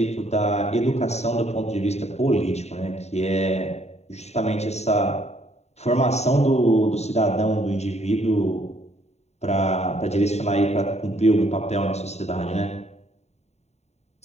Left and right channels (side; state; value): right; late; 0.32 ms